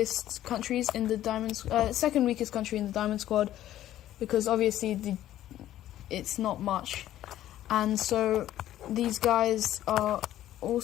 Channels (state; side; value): quieter; right; 13.0 dB